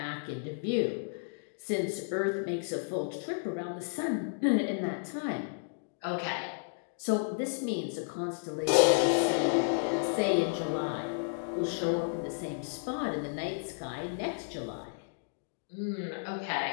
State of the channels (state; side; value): silent; right; digital silence